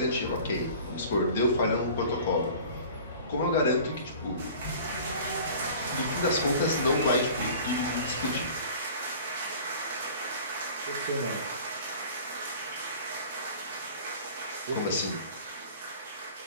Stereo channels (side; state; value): both; inverted; correlation -0.44